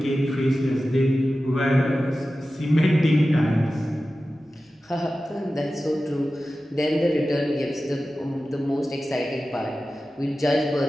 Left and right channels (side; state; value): both; normal; correlation 0.94